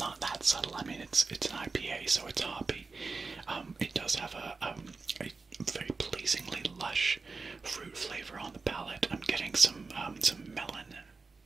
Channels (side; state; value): left; quieter; 4.2 dB